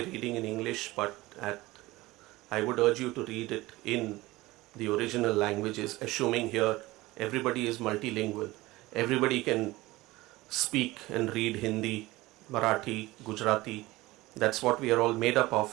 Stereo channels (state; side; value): quieter; left; 19.4 dB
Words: reading in English, but I would urge you to read it in the original languages, assuming here everybody is multilingual. Everybody can speak and read Hindi, Marathi, Gujarati. That's what we are all made up